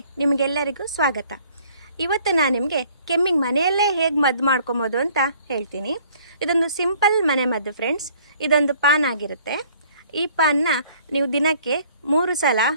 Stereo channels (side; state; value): both; inverted; correlation -0.57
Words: ನಿಮಗೆಲ್ಲರಿಗೂ ಸ್ವಾಗತ. ಇವತ್ತು ನಾನು ನಿಮಗೆ ಕೆಮ್ಮಿಗೆ ಮನೆಯಲ್ಲೇ ಹೇಗೆ ಮದ್ದು ಮಾಡ್ಕೊಬೋದು ಅಂತ ಹೇಳ್ತೀನಿ. ಇದೊಂದು ಸಿಂಪಲ್ ಮನೆ ಮದ್ದು ಫ್ರೆಂಡ್ಸ್. ಇದೊಂದು ಪಾನ್ ಆಗಿರುತ್ತೆ. ಈ ಪಾನ್ನ ನೀವು ದಿನಕ್ಕೆ 3 ಸಲ